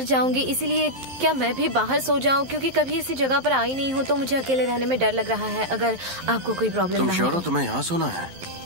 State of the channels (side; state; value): left; late; 11 ms